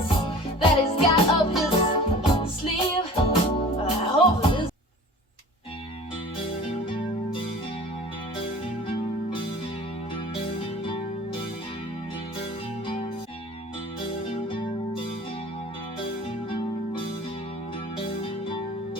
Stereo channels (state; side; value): normal; both; correlation 0.42